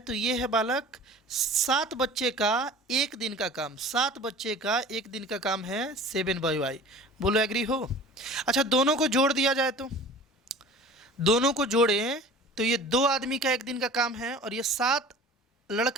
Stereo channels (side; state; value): both; normal; correlation 0.42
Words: ये है बालक 7 बच्चे का एक दिन का काम, 7 बच्चे का एक दिन का काम है 7/y। बोलो एग्री हो। अच्छा दोनों को जोड़ दिया जाए तो, दोनों को जोड़ें तो ये 2 आदमी का एक दिन का काम है और ये 7